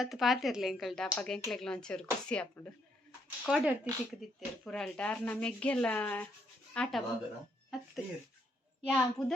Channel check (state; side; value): normal; both; correlation 0.74